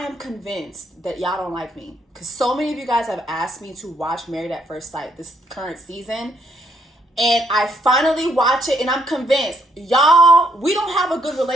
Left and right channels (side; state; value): both; normal; correlation 0.71